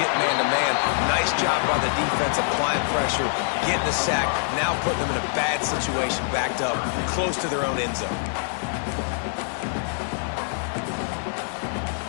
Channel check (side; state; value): right; silent; digital silence